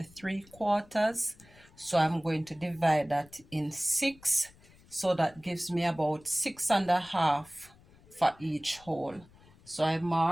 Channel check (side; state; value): left; noise; rumble, 26 dB below the sound